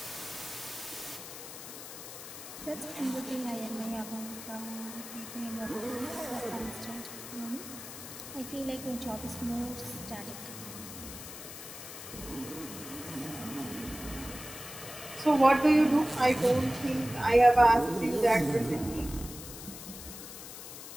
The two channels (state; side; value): noise; left; hiss, 11 dB below the sound